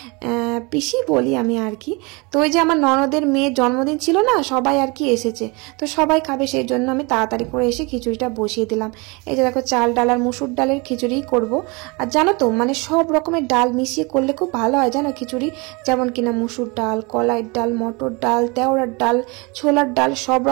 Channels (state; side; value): quieter; left; 28.1 dB